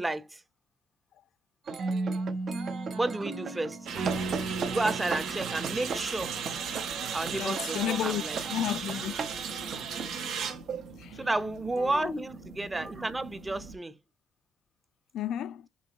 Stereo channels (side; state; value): both; normal; correlation 0.77